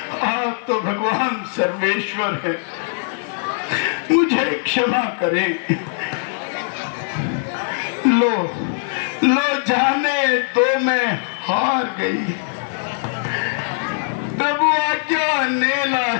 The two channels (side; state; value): right; silent; 61 dB below the other